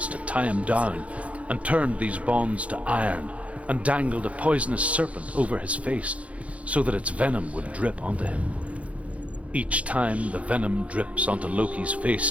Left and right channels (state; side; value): late; left; 0.064 ms